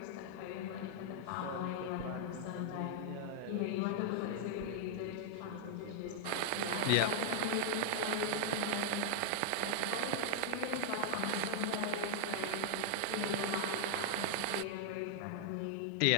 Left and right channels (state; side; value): different; both; correlation 0.00